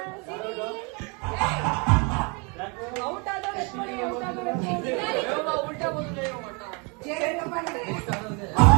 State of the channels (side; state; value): left; quieter; 32.1 dB